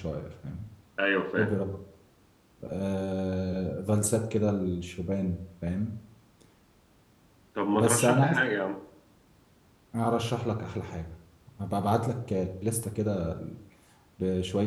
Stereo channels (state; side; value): identical; both; correlation 1.00